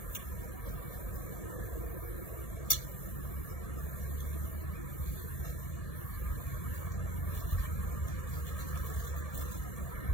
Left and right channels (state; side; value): late; right; 1.7 ms